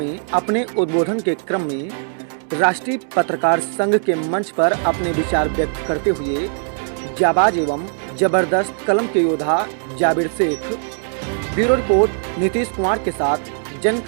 अपने उद्बोधन के क्रम में राष्ट्रीय पत्रकार संघ के मंच पर अपने विचार व्यक्त करते हुए जाबाज एवं जबरदस्त कलम के योद्धा जाबिर शेख। ब्यूरो रिपोर्ट नीतीश कुमार के साथ जन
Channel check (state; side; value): silent; left; digital silence